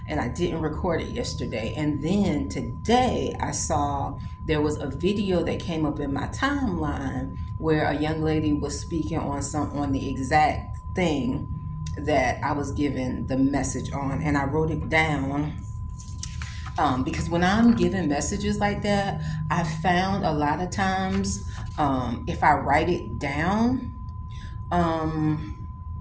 and I didn't record it yesterday. And then today I saw there was a video that came up in my timeline where a young lady was speaking on the exact thing that I was given the message on, and I wrote it down because when I'm giving messages like that, I found a lot of times if I write it down, um,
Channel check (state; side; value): identical; both; correlation 1.00